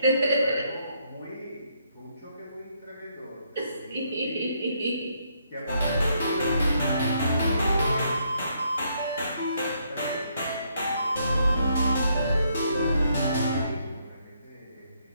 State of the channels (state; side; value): inverted; both; correlation -0.73